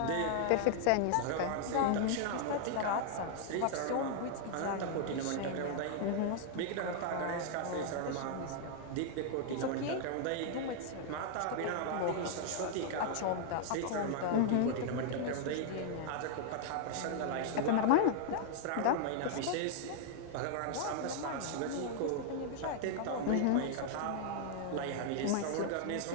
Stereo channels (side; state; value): both; different; correlation 0.00